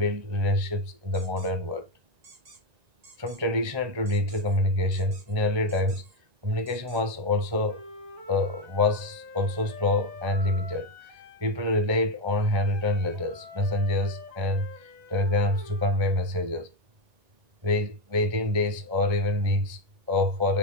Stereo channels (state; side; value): late; left; 1.9 ms